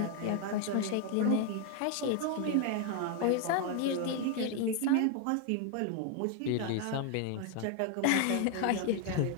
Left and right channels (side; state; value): both; different; correlation 0.01